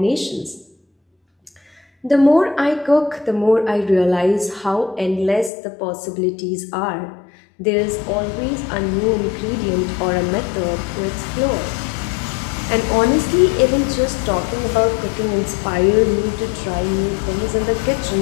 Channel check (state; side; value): drops out; right; at 5.5 s